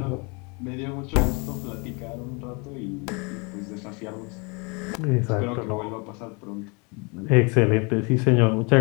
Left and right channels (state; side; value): quieter; right; 31.2 dB